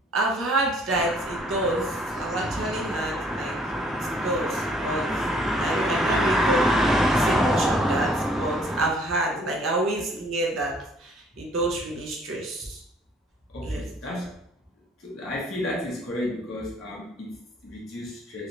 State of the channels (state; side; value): normal; both; correlation 0.60